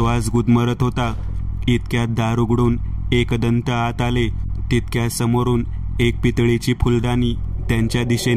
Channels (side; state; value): both; identical; correlation 1.00